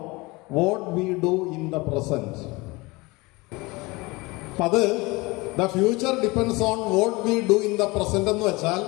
what we do in the present. അപ്പം അത് the future depends on what we do in the present എന്ന് വെച്ചാൽ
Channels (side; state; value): right; quieter; 23.8 dB